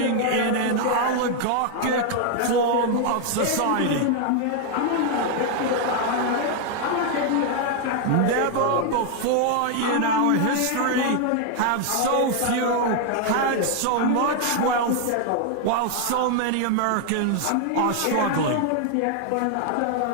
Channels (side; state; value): both; different; correlation 0.00